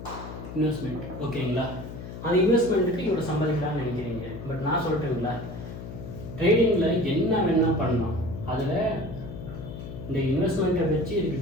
Investment ஓகேங்களா? அந்த இன்வெஸ்ட்மெண்ட்டுக்கு இவ்வளோ சம்பாதிக்கலாம்னு நினைக்கிறீங்க. பட் நான் சொல்லிட்டேங்களா, ட்ரேடிங்கில் என்ன வேணால் பண்ணலாம். அதில் இந்த இன்வெஸ்ட்மெண்ட்டை வச்சு இதுக்கு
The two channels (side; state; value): left; noise; hum, 10 dB below the sound